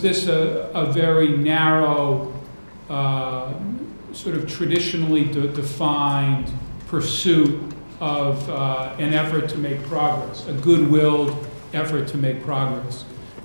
a very narrow, sort of traditionally defined pursuit of an effort to make progress, a good-willed effort to make progress?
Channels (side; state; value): both; inverted; correlation -1.00